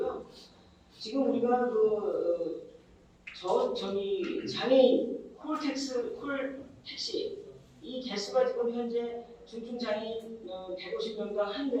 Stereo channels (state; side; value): identical; both; correlation 1.00